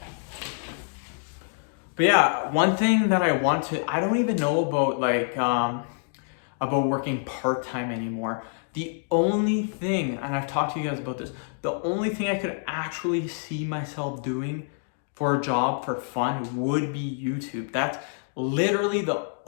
But yeah, one thing that I don't even know about about working part-time anymore. The only thing, and I've talked to you guys about this, the only thing I could actually see myself doing for a job for fun would be YouTube. That's literally the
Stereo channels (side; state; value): right; silent; digital silence